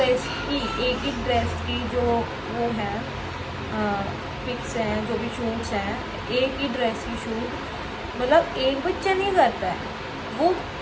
की जो वो है पिक्स हैं, जो भी शूट्स हैं, एक ही ड्रेस की शूट, मतलब एक बच्चा नहीं करता है, वो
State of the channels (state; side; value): identical; both; correlation 1.00